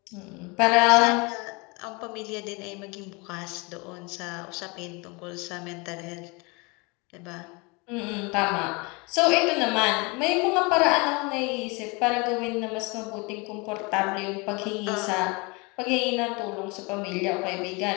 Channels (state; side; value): quieter; right; 28.3 dB